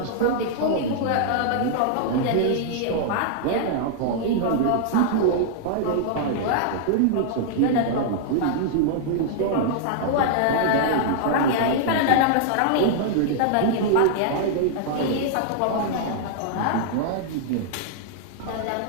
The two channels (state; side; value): different; both; correlation -0.01